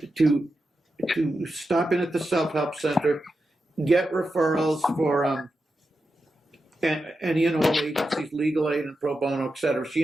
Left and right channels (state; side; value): normal; both; correlation 0.89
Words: stop in at the self-help center, get referrals for and any and all agencies, legal aid and pro bono, et cetera. She